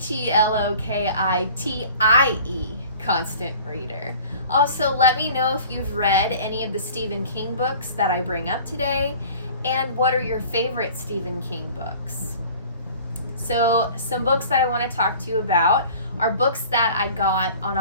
Constant Reader. Also, let me know if you've read any of the Stephen King books that I bring up today, and what are your favorite Stephen King books. So, some books that I want to talk to you about are books that I got on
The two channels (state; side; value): inverted; both; correlation -0.46